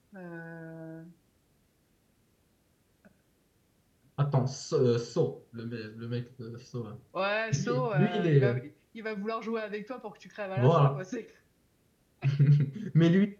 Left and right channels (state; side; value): identical; both; correlation 1.00